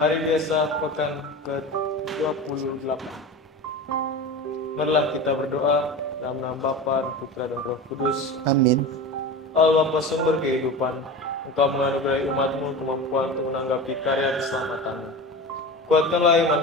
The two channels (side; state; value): both; normal; correlation 0.29